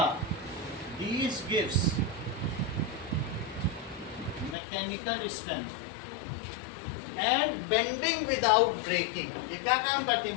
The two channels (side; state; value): right; drops out; at 4.5 s